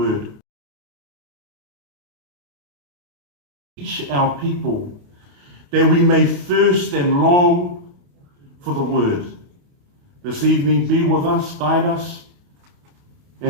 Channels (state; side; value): late; left; 28 ms